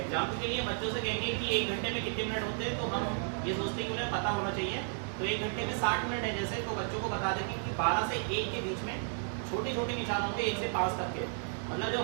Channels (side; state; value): left; silent; 56 dB below the other